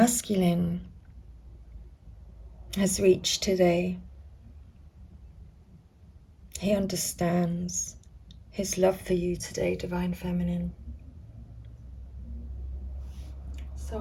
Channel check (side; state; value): both; identical; correlation 1.00